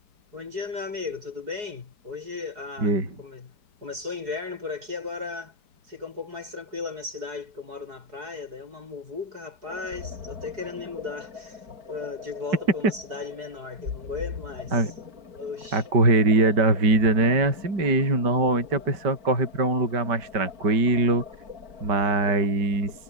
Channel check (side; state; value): left; late; 4.7 ms